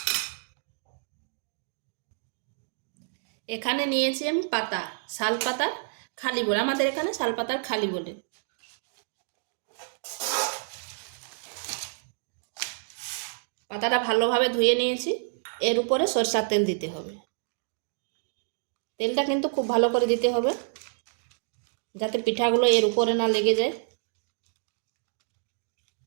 এখানে নিয়েছি আমি পাতা, শাল পাতার খালি বলে, আমাদের এখানে শালপাতার খালি বলে। পাতাটা ভালোভাবে ধুয়ে নিয়েছি। এর উপরে সরষার তেল দিতে হবে। তেলটা কিন্তু খুব ভালো করে দিতে হবে, যাতে পিঠাগুলো এর উপরে না লেগে যায়।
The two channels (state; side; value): silent; left; digital silence